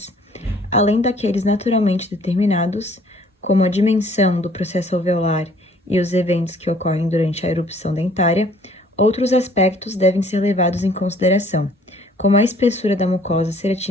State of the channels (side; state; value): both; normal; correlation 0.57